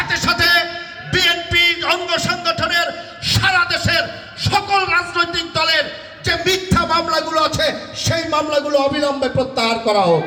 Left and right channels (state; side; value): identical; both; correlation 1.00